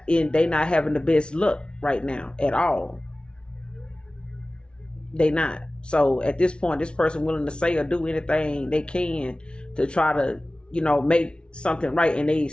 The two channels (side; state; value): right; late; 0.056 ms